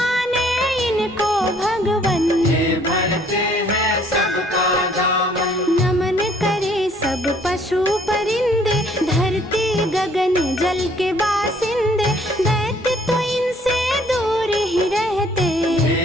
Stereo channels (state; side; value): normal; both; correlation 0.61